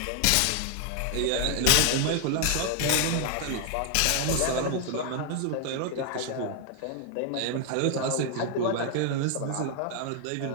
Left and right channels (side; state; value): both; different; correlation 0.00